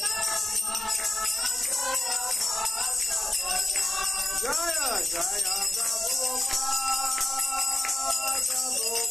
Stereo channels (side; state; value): both; normal; correlation 0.93